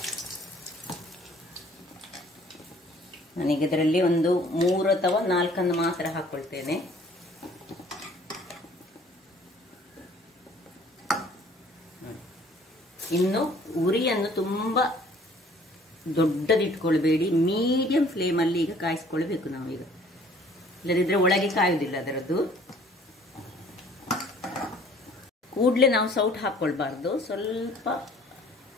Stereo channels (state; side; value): normal; both; correlation 0.55